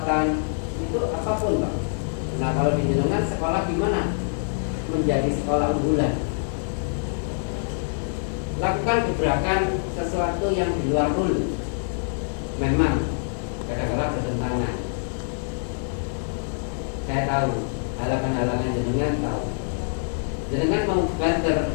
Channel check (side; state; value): right; silent; 62 dB below the other